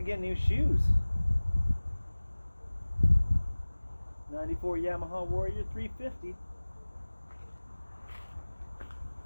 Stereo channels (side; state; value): both; inverted; correlation -1.00